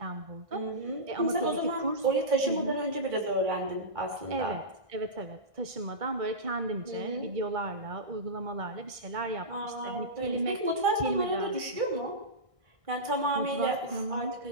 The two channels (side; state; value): left; late; 1.6 ms